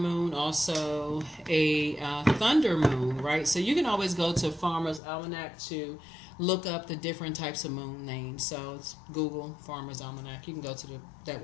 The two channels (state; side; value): drops out; right; at 5.0 s